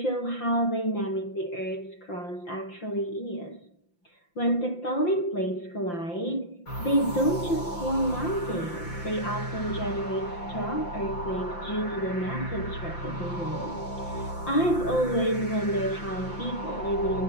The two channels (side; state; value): right; late; 5.8 ms